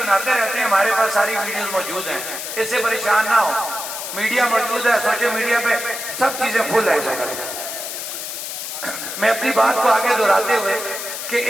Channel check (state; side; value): noise; left; hiss, 6 dB below the sound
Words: रहते हैं, हमारे पास सारी वीडियोस मौजूद हैं, इससे परेशान ना हो। मीडिया मौजूद है, सोशल मीडिया पे सब चीजें फुल है। मैं अपनी बात को आगे दोहराते हुए कि